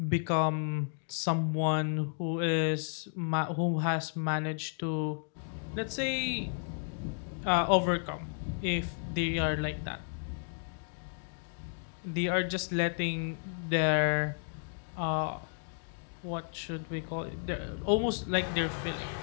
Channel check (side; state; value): right; silent; digital silence